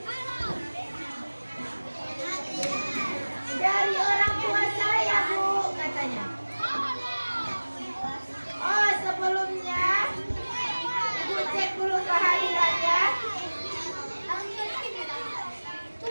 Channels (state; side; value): inverted; both; correlation -1.00